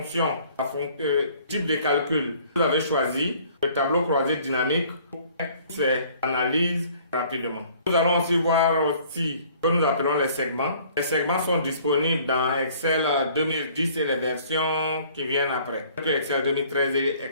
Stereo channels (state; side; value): inverted; both; correlation -0.56